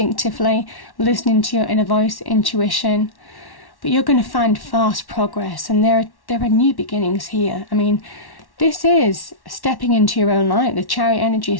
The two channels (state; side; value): late; right; 1.1 ms